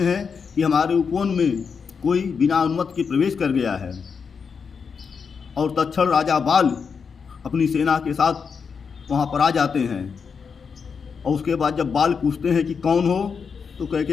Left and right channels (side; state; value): right; quieter; 5.9 dB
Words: कि हमारे उपवन में कोई बिना अनुमति के प्रवेश कर गया है। और तत्क्षण राजा बाल अपनी सेना के साथ वहाँ पर आ जाते हैं। और उसके बाद जब बाल पूछते हैं कि कौन हो, तो